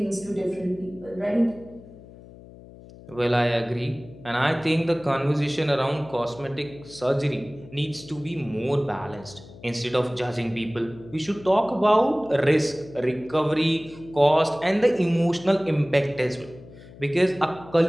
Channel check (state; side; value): noise; left; hum, 19 dB below the sound